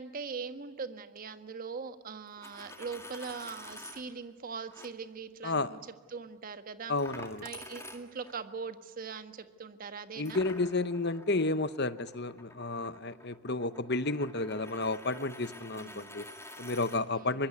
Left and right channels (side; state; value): both; normal; correlation -0.02